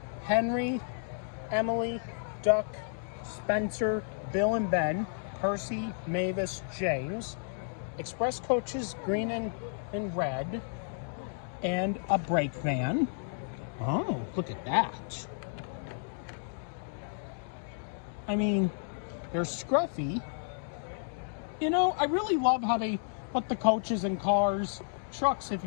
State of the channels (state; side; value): silent; right; digital silence